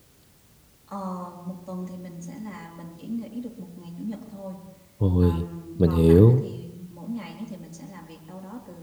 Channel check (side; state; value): both; identical; correlation 1.00